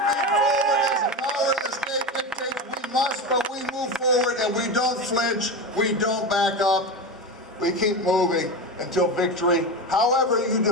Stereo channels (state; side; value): normal; both; correlation 0.21